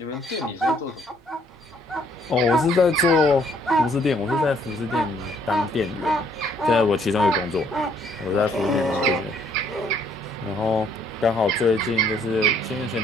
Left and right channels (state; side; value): normal; both; correlation 0.65